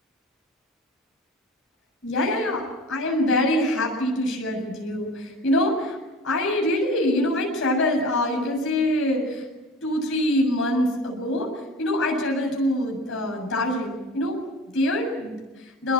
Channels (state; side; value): normal; both; correlation 0.38